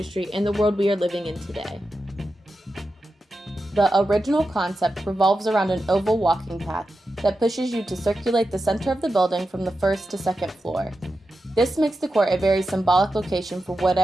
and the world we are living in today. The original concept revolves around an oval walking path that pushes you to circulate the center of the building from the first to second floor. This makes the court a very symbolic location for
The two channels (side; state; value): both; normal; correlation 0.90